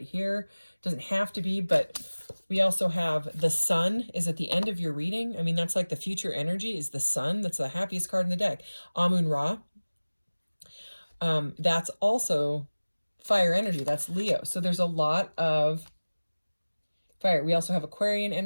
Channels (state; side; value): inverted; both; correlation -1.00